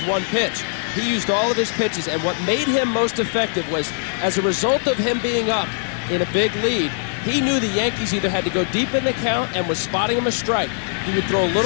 one pitch. He used all of his pitches, and what made him most effective was, as a result of him being up in a big lead, he knew the Yankees either had to go deep in the count and was spotting him a strike. He would throw a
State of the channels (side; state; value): right; silent; digital silence